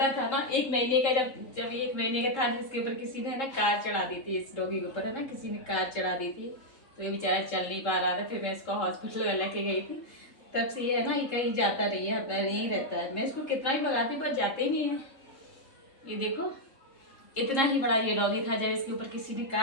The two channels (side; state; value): right; late; 3.7 ms